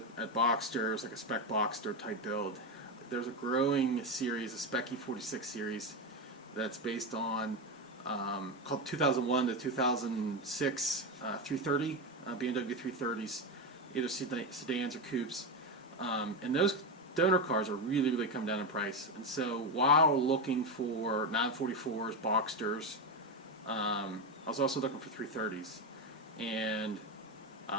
at Boxsters, like a Spec Boxster type build. There's a growing series, a Spec E46 series, that's based on called 2001 to 2006 330 BMW 330s, either sedans or coupes, and those donor cars are really come down in price. And so while looking for 944s, Boxsters, I was also looking for 330s, and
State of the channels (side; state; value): both; normal; correlation 0.13